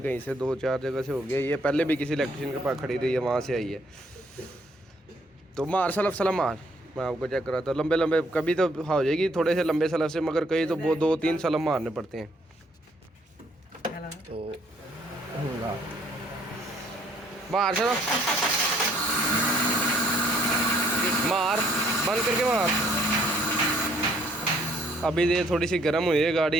कहीं से 2-4 जगह से हो गया, ये पहले भी किसी इलेक्ट्रिशियन के पास खड़ी रही है, वहाँ से आई है। तो मार सलफ सलफ मार, मैं आपको चेक कराता हूँ। लंबे लंबे कभी तो हो जाएगी थोड़े से लंबे सलफ से, मगर कहीं तो वो 2-3 सलफ मारने पड़ते हैं। तो मार चलो, मार बंद करके मार। अभी ये थोड़ी सी गर्म हुई है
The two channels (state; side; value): normal; both; correlation 0.65